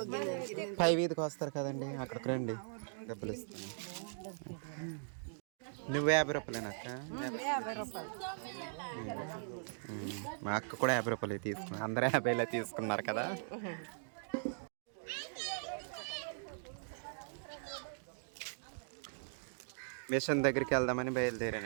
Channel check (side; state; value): left; silent; digital silence